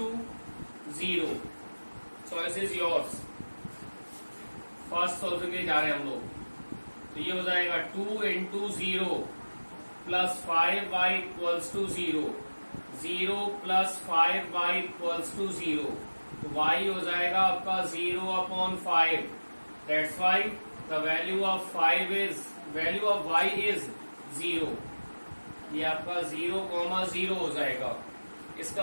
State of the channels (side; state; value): both; inverted; correlation -1.00